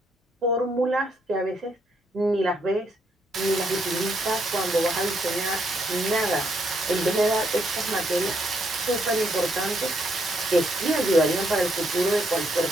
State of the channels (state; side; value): normal; both; correlation 0.74